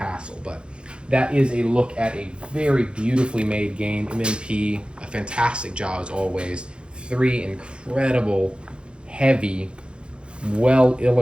But that is a look at a very beautifully made game. MMP, a fantastic job as always. 3 incredible, heavy,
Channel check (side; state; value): left; late; 0.055 ms